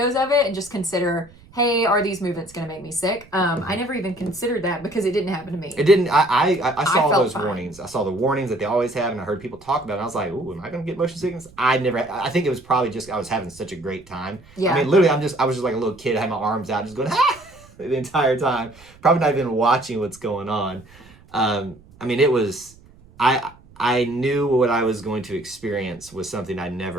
of it and just consider, hey, are these movements going to make me sick? I never even considered that because it didn't happen to me. It didn't. I saw felt those fine. warnings. I saw the warnings that they always have, and I heard people talk about it. And I was like, "Ooh, am I going to get motion sickness?" I never. I think it was probably just I was having such a great time. Yeah. I mean, literally, I was just like a little kid. I had my arms out, just going the entire time. Probably not even watching what's going on. I mean, it was. I knew what I was going to experience was something I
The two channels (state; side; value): noise; right; rumble, 25 dB below the sound